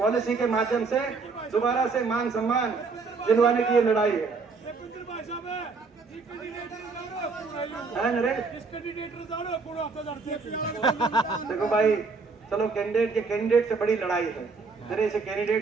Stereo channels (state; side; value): quieter; left; 4.4 dB